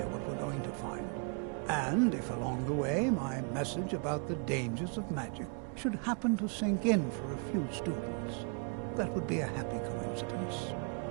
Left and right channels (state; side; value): quieter; left; 38.8 dB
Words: what we're going to find. And if along the way my message about the dangers of magic should happen to sink in for a few students, that would be a happy coincidence.